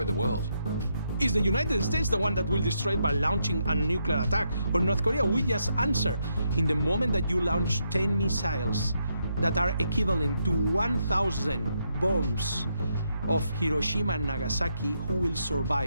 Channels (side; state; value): both; inverted; correlation -0.79